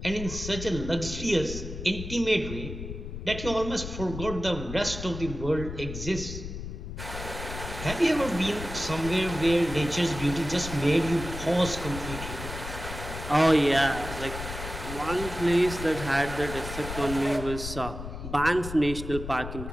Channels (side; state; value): left; noise; rumble, 8 dB below the sound